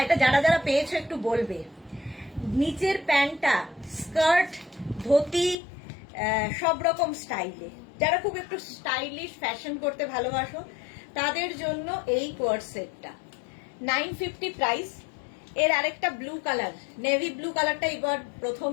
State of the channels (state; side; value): drops out; right; at 5.6 s